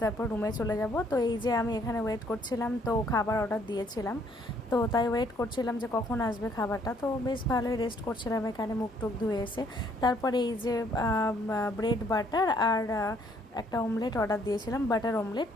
তারপর রুমে চলে যাব। তো এই যে আমি এখানে ওয়েট করছিলাম, তো খাবার অর্ডার দিয়েছিলাম, তো তাই ওয়েট করছিলাম যে কখন আসবে খাবারটা। তো বেশ ভালোই রেস্ট করছিলাম এখানে, মুখ টুক ধুয়ে এসে। তারপরে এই যে ব্রেড বাটার আর একটা অমলেট অর্ডার দিয়েছিলাম, বাটার অমলেট।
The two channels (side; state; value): both; normal; correlation 0.65